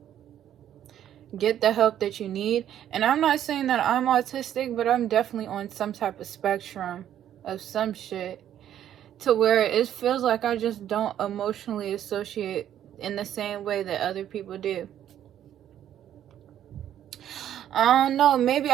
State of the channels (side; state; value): left; quieter; 10.8 dB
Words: get the help that you need. And I'm not saying that I'm autistic, but I'm definitely on some type of spectrum of some shit, to where it feels like I just don't emotionally associate in the same way that other people do. I don't know, maybe